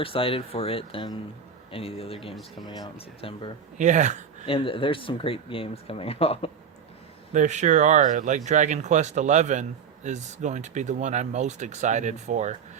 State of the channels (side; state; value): left; quieter; 6.9 dB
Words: excited for it than any of the other games coming out in September. Yeah. And there's some great games coming out. There sure are. Like Dragon Quest XI is going to be the one I'm most excited for